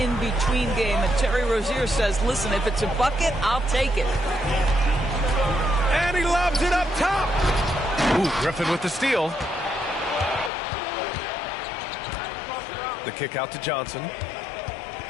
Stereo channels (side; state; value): right; drops out; at 10.5 s